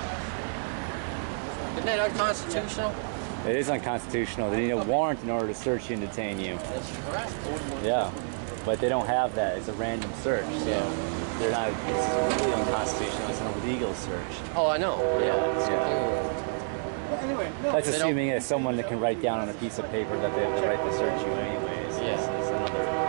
Isn't that unconstitutional? It is unconstitutional. They need a warrant in order to search you and detain you. That's correct. Yeah, but they don't have that. It's a random search, so they're not. It's really unconstitutional. It's an illegal search. Oh, I know. Anyway, no. That's assuming it's someone that can write down on a piece of paper that they have the right to search you anyways. Yeah. It's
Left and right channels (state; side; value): silent; left; digital silence